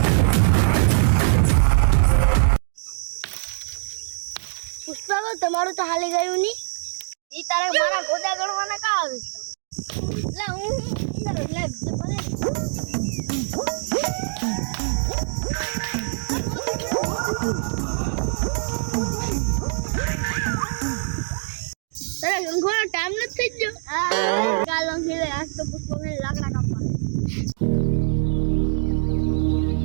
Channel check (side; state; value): left; silent; digital silence